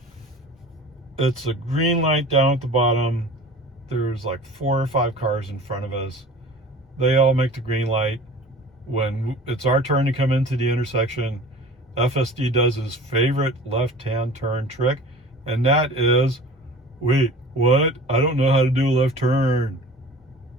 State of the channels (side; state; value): both; normal; correlation 0.41